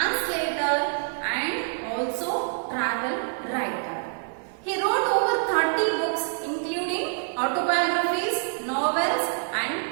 and also travel writer. He wrote over 30 books including autobiographies, novels and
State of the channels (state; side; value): silent; left; digital silence